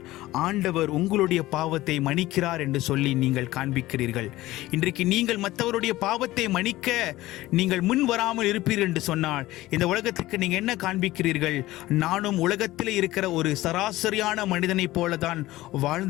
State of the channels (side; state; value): right; quieter; 17.2 dB